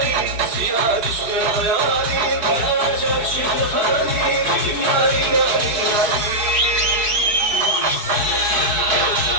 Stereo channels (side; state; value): left; late; 4.6 ms